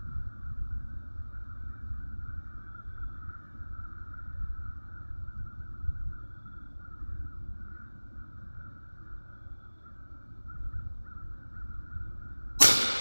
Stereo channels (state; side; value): inverted; both; correlation -1.00